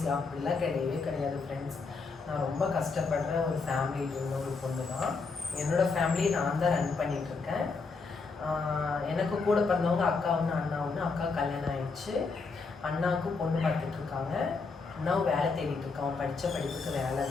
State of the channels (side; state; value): right; quieter; 4.4 dB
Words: அப்படிலாம் கிடையவே கிடையாது ஃப்ரெண்ட்ஸ். நான் ரொம்ப கஷ்டப்படுற ஒரு ஃபேமிலியில் இருந்த ஒரு பொண்ணு தான். என்னோடய ஃபேமிலியை நான் தான் ரன் பண்ணிகிட்ருக்கேன். எனக்கு கூட பிறந்தவங்க அக்கா ஒன்று, அண்ணா ஒன்று. அக்கா கல்யாணம் ஆயிடுச்சு. அண்ணாவுக்கும் பொண்ணு பார்த்துட்ருக்காங்க. அண்ணாவும் வேலை தேடிட்டு இருக்கான். படித்த படிப்புக்கு வேலை